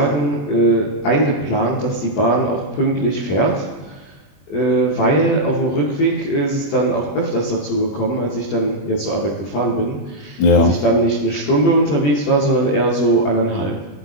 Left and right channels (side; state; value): right; late; 20 ms